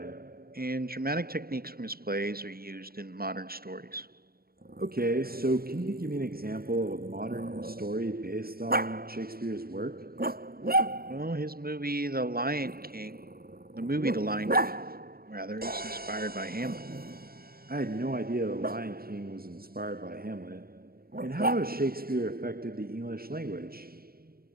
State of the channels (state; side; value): late; left; 0.44 ms